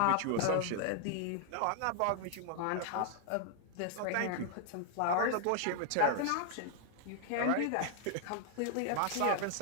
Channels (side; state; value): both; different; correlation 0.00